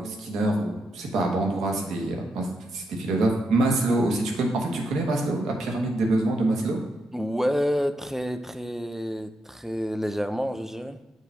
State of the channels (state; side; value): normal; both; correlation 0.82